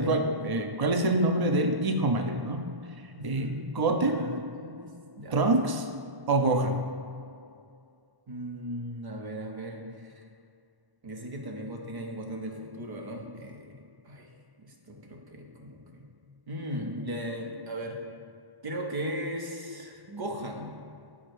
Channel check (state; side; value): late; left; 1.1 ms